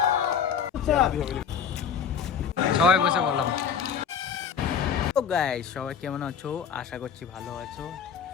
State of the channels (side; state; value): right; quieter; 7.3 dB